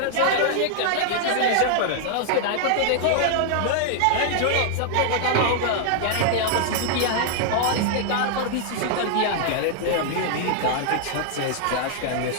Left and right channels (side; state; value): both; different; correlation 0.00